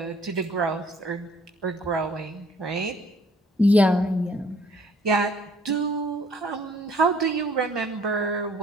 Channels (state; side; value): normal; both; correlation 0.58